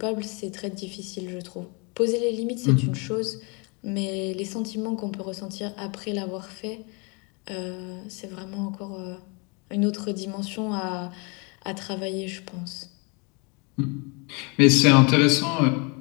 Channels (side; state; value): right; quieter; 31.8 dB